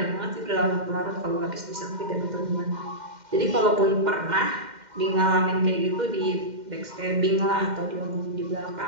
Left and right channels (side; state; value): left; late; 2.1 ms